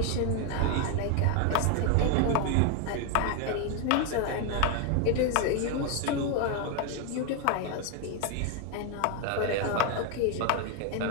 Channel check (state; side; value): different; both; correlation 0.01